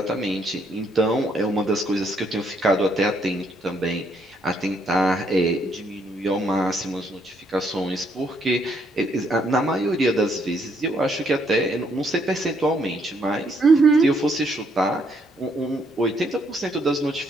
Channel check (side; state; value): both; normal; correlation 0.71